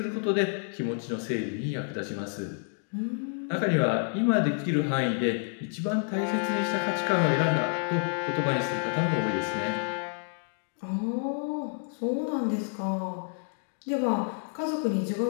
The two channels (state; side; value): silent; right; 58 dB below the other